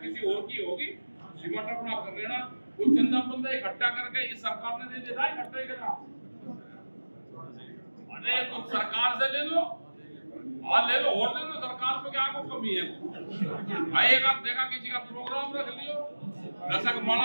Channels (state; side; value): inverted; both; correlation -1.00